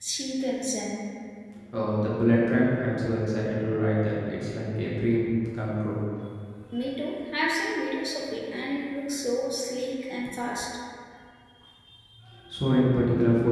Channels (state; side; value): identical; both; correlation 1.00